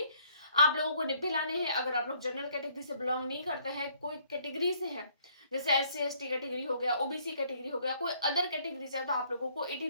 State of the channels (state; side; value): inverted; both; correlation -0.64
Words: आप लोगों को 90 लाने हैं। अगर आप लोग जनरल कैटेगरी से बिलोंग नहीं करते हैं, कोई कैटेगरी से है, जैसे एससी एसटी कैटेगरी हो गया, ओबीसी कैटेगरी हो गया, कोई अदर कैटेगरी से है, तो आप लोगों को